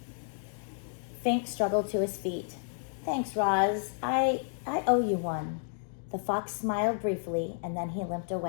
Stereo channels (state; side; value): silent; right; digital silence